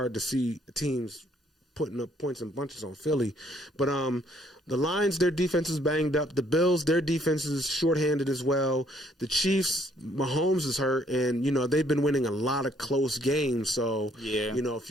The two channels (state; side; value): normal; both; correlation 0.65